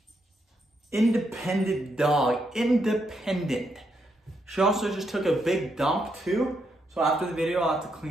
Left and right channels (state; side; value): normal; both; correlation 0.79